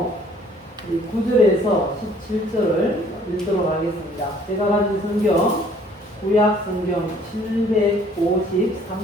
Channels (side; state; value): both; normal; correlation 0.57